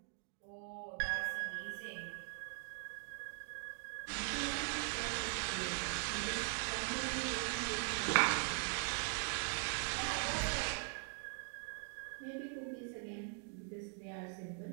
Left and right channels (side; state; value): left; silent; 50 dB below the other